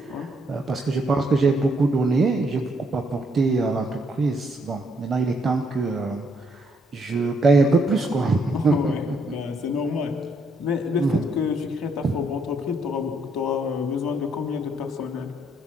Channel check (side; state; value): both; normal; correlation 0.72